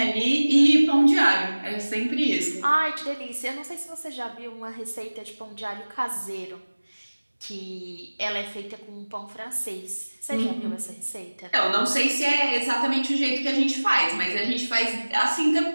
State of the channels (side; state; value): both; inverted; correlation -1.00